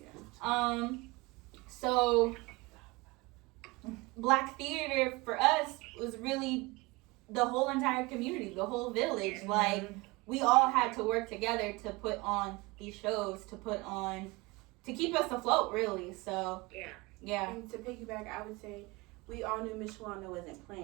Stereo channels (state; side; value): quieter; left; 24.1 dB